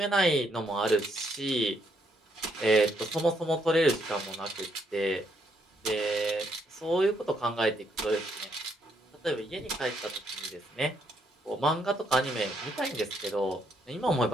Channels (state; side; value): normal; both; correlation 0.74